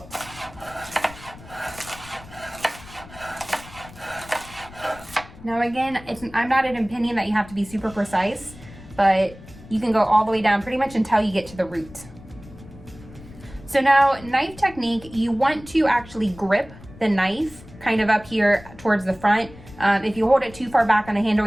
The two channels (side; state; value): left; noise; rumble, 19 dB below the sound